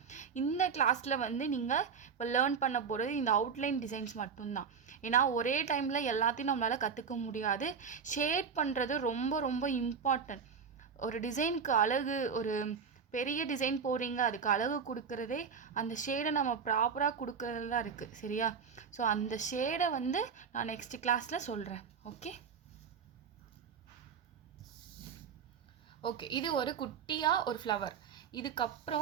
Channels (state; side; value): quieter; left; 6.3 dB